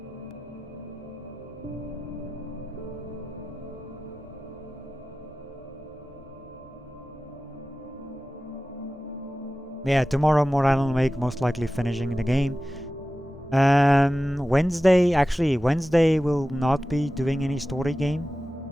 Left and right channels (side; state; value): both; normal; correlation 0.95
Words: Yeah, tomorrow more Alan Wake, most likely finishing the game. Wednesday will not be doing any story game.